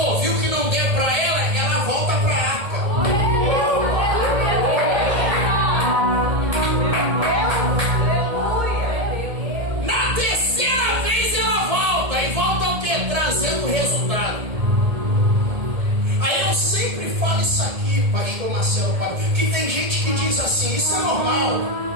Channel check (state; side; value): late; left; 1.7 ms